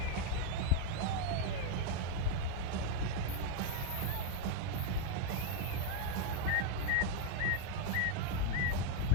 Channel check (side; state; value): both; different; correlation 0.01